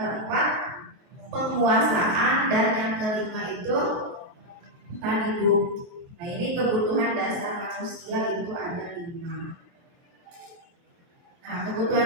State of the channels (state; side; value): late; left; 23 ms